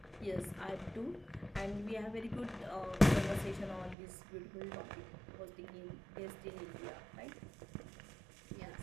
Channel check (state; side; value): drops out; left; at 4.0 s